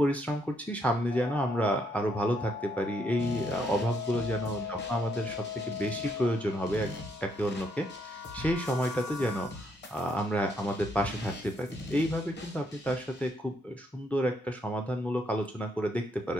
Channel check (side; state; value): both; normal; correlation 0.73